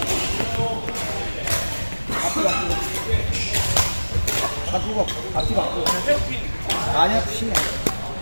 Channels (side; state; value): both; inverted; correlation -1.00